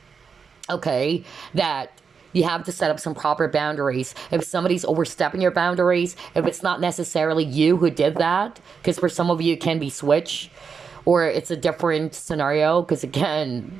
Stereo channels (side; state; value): left; quieter; 5.8 dB